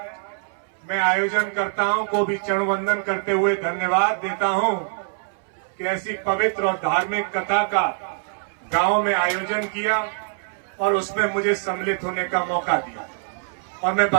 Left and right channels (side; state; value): left; silent; 63 dB below the other